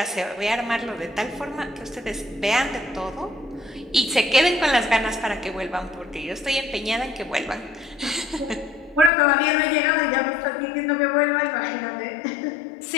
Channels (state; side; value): drops out; right; at 9.1 s